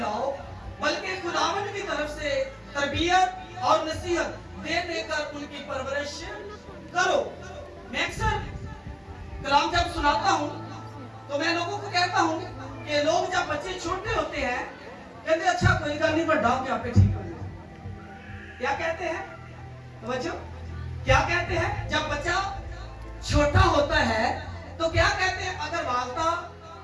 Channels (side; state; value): both; identical; correlation 1.00